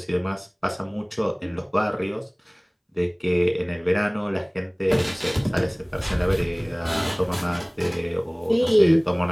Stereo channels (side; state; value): both; identical; correlation 1.00